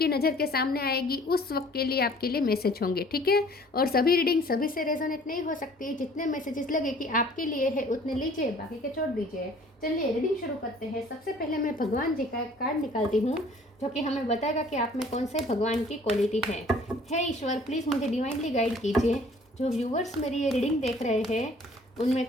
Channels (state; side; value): normal; both; correlation 0.54